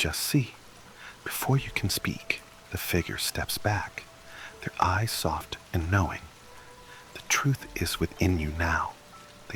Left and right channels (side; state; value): both; identical; correlation 1.00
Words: see? Before you can speak, the figure steps back, their eyes soft and knowing. The truth is within you now,